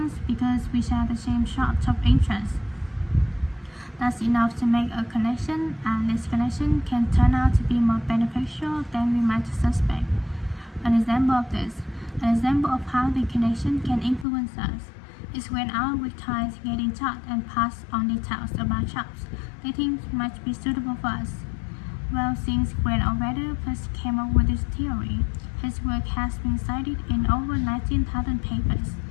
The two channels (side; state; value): right; drops out; at 14.2 s